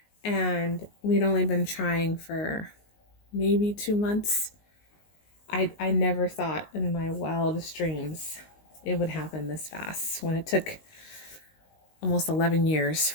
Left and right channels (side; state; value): right; late; 19 ms